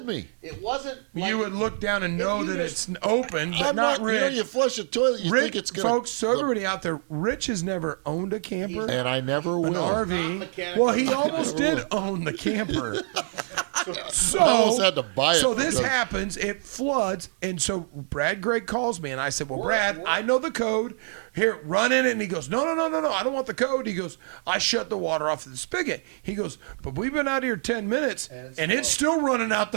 wasn't- me. It wasn't like You would look down and if know you that just- it's open. But I'm not. Rich. You flush a toilet, you Rich, think it's gonna. folks. So everybody out there, Rich has never owned a camper. He's And I never he's- will. He's not mechanical. Well, he almost Never did own the camper. So, I almost had to buy it. So this because- happens, it floods, and so Brad Gray calls me, and I said, well, We're- Brad, we're- I know the code. Here, run in it. And he goes, no, I don't want the code. He goes, I shut the water off the spigot. He goes, but we've been out here 10 minutes, And it's still running out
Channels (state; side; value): silent; left; 59 dB below the other